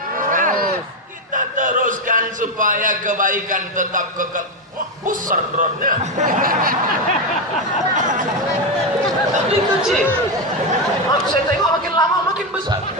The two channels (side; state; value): both; normal; correlation 0.09